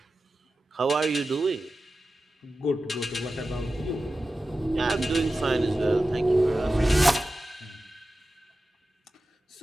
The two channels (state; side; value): normal; both; correlation 0.93